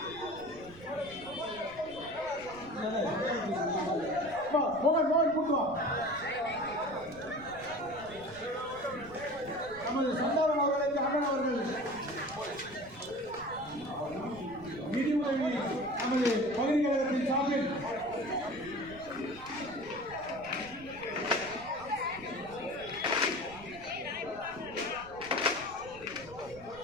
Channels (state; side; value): noise; right; rumble, 19 dB below the sound